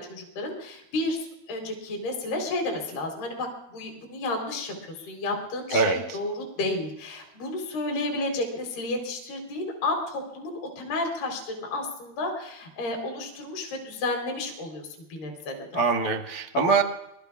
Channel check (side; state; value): right; late; 13 ms